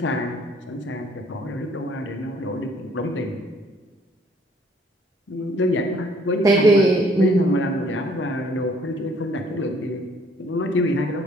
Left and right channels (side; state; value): both; normal; correlation 0.61